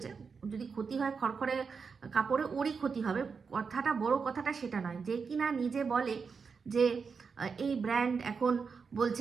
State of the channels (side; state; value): left; quieter; 5.5 dB